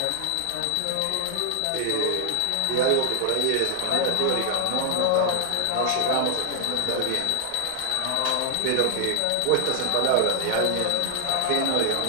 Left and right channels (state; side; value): different; both; correlation 0.00